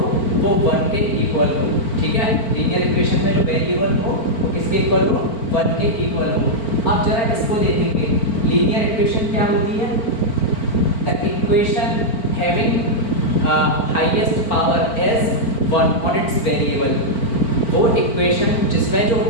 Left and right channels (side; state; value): right; late; 4.4 ms